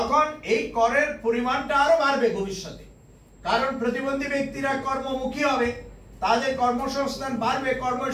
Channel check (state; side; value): identical; both; correlation 1.00